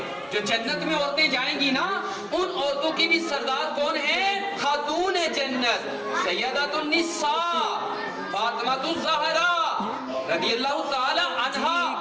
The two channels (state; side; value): identical; both; correlation 1.00